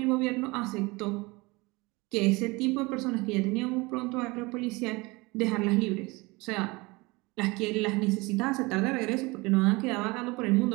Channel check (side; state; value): left; quieter; 24.3 dB